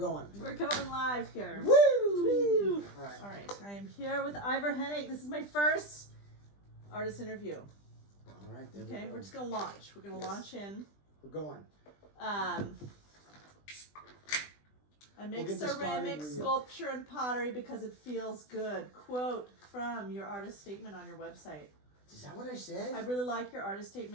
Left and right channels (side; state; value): right; late; 20 ms